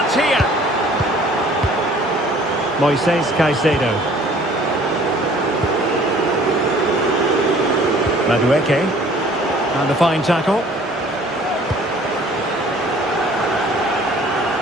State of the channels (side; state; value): both; normal; correlation 0.53